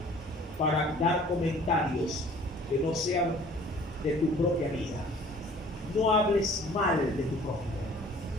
para dar comentarios que no sean de tu propia vida. No hables mal de tu prójimo.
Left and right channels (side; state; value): both; normal; correlation 0.51